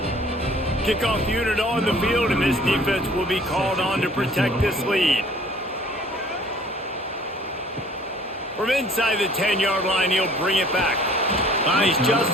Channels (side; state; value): both; normal; correlation 0.53